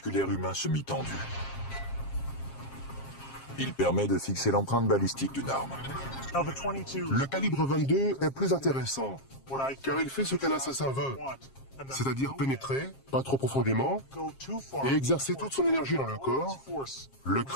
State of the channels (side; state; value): right; late; 7.5 ms